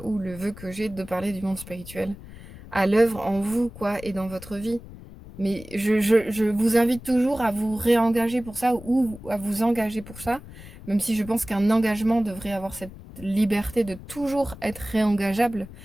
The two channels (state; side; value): noise; left; rumble, 16 dB below the sound